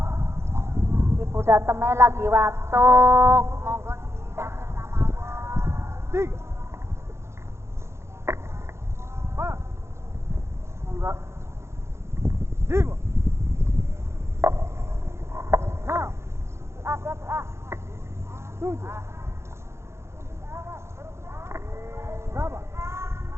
Ibu Dateme lagi watuk. Monggo 3. Pak. monggo 5. 6. 7. Berapa?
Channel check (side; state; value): left; late; 0.13 ms